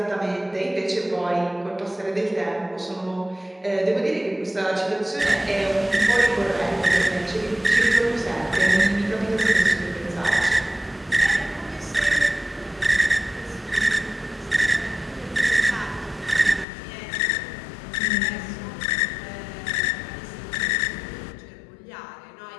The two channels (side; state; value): right; drops out; at 16.7 s